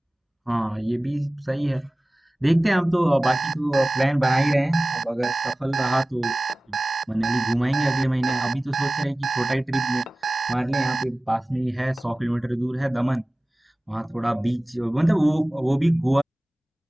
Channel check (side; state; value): both; normal; correlation 0.98